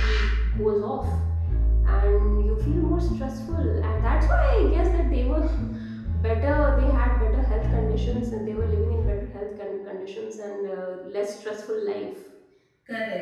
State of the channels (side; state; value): both; identical; correlation 1.00